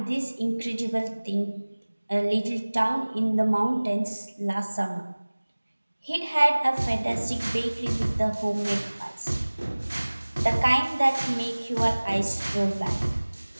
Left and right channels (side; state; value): both; inverted; correlation -1.00